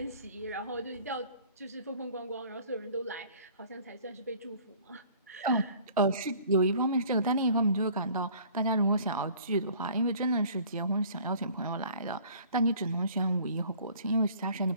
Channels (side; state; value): both; inverted; correlation -0.51